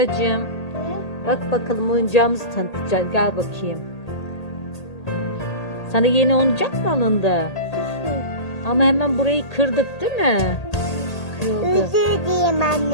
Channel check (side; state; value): right; late; 1.8 ms